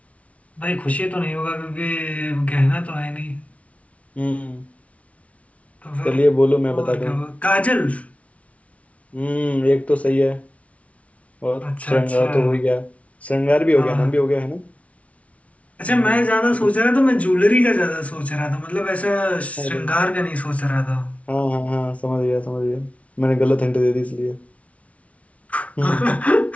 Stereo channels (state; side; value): late; right; 0.065 ms